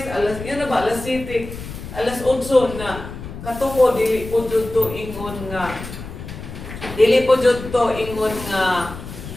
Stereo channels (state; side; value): noise; left; rumble, 11 dB below the sound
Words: alas yan na ba alas 7 alas 8 na katuko dili po jud to ingon nga